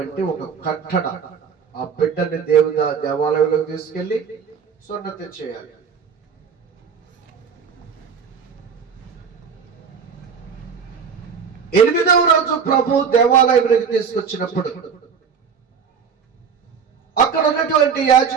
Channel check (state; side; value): quieter; left; 6.5 dB